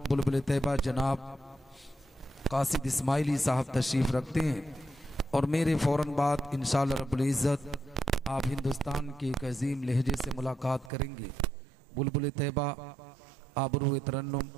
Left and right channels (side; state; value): left; drops out; at 10.9 s